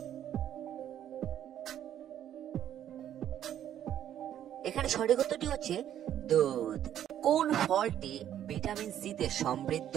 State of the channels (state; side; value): quieter; left; 10.7 dB